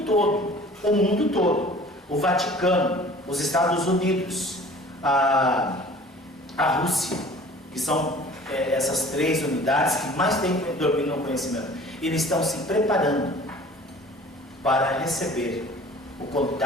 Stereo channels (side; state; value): both; normal; correlation 0.47